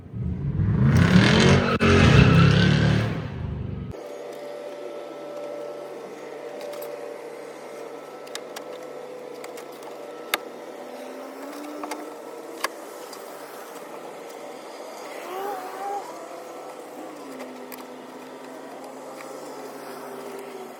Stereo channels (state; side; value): identical; both; correlation 1.00